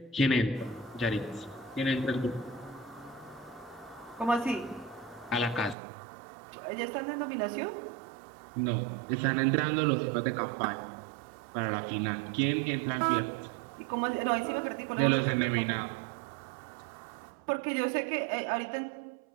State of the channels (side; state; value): left; drops out; at 5.8 s